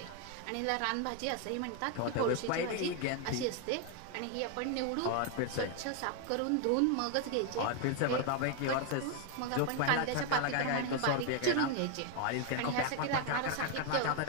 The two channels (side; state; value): both; different; correlation 0.01